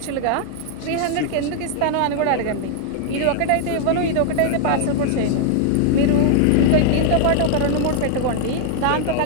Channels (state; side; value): different; both; correlation 0.00